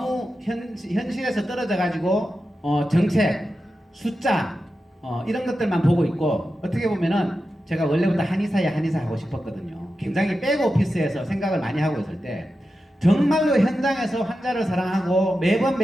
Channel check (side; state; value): both; normal; correlation 0.91